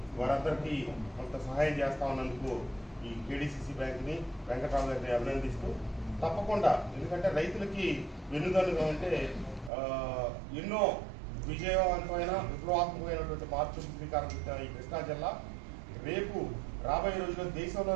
వారందరికీ కొంత సహాయం చేస్తా ఉన్నందుకు ఈ కేడీసీసీ బ్యాంక్ని, వెంకట్రావు గారిని అభినందిస్తూ, తప్పకుండా ఎందుకంటే రైతులకి వెన్నుదన్నుగా అంటే ఎన్నో విజయవంతమైన విప్లవాత్మకమైనటువంటి మార్పులు శ్రీకారం చుట్టిన ఈ కృష్ణా జిల్లా రేపు రాబోయే రోజుల్లో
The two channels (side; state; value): left; drops out; at 9.7 s